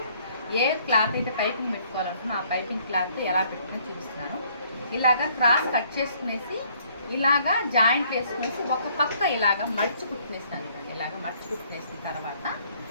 ఏ క్లాత్ అయితే పైపింగ్ పెట్టుకోవాలనుకున్నా ఆ పైపింగ్ క్లాత్ ఎలా పెట్టుకుని చూపిస్తున్నాను. ఇలాగా క్రాస్ కట్ చేసుకునేసి ఇలాగా జాయింట్ వేసుకునేసి ఒక పక్క ఇలాగా మర్చి కుట్టునేస్తాను. ఇలాగ మర్చి కుట్టునేసిన తర్వాత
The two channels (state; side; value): inverted; both; correlation -0.63